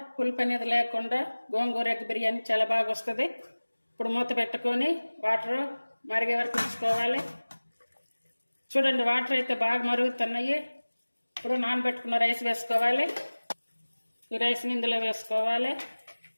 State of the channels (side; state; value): both; inverted; correlation -1.00